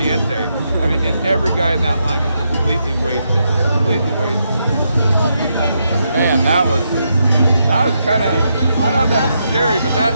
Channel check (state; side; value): inverted; both; correlation -0.81